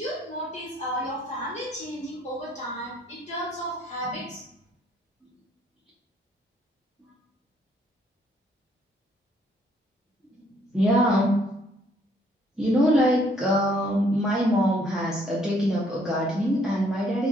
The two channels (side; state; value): both; normal; correlation 0.65